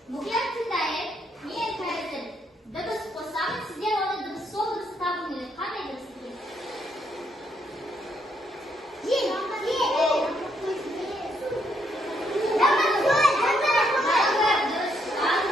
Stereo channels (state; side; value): normal; both; correlation 0.74